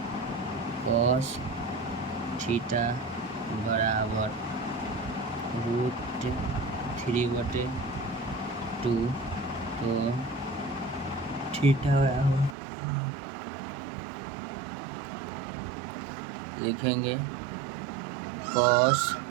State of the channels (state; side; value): drops out; left; at 12.6 s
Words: cos थीटा बराबर √3/2 तो थीटा बराबर लिखेंगे cos